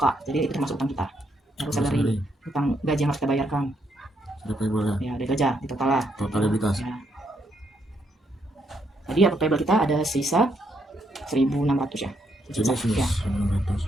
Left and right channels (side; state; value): both; normal; correlation 0.75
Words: Jadi itu termasuk utang kita. Lalu salary, utang gaji yang harus kita bayarkan. Sudah payable ya? Ya, ada gaji di total lah. Total liabilitas. Ya. Jadi account payable kita ada sisa 1.600 ya. Sini sini. Ya.